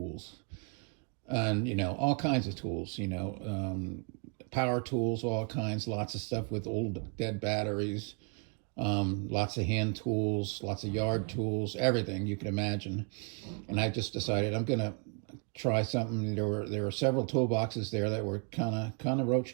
And, all kinds of tools, power tools, all kinds, lots of stuff with old dead batteries. Lots of hand tools, lots of yard tools, everything you can imagine. And I just decided I'm gonna try something. There were several toolboxes there that were kind of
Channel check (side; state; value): left; quieter; 36.9 dB